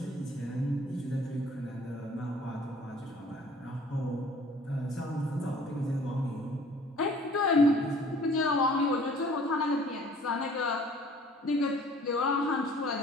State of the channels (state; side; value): normal; both; correlation 0.53